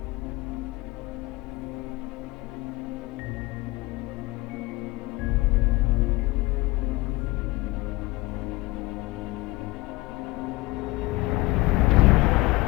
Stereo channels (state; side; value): quieter; right; 21.1 dB